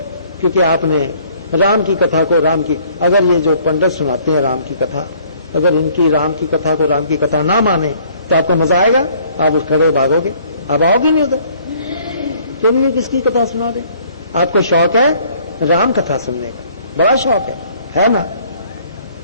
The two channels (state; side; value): inverted; both; correlation -0.59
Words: क्योंकि आपने राम की कथा को राम की, अगर ये जो पंडित सुनाते हैं राम की कथा, अगर इनकी राम की कथा को राम की कथा ना माने तो आपको मजा आएगा? आप उस खड़े भागोगे, आप आओगे नहीं उधर। तो ये किसकी कथा सुना दे? आपको शौक है राम कथा सुनने का, बड़ा शौक है ना?